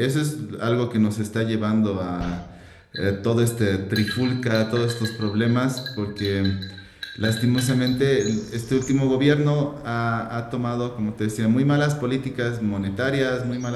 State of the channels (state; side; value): identical; both; correlation 1.00